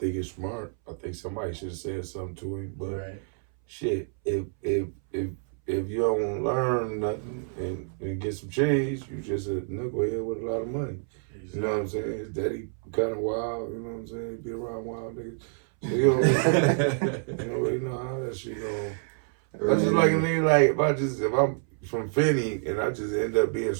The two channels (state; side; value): silent; left; 59 dB below the other